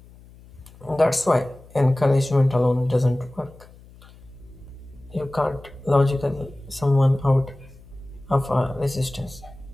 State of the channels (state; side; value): noise; left; hum, 23 dB below the sound